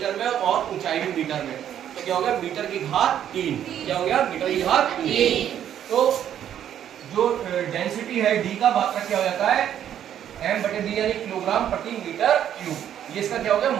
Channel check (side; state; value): left; quieter; 10.2 dB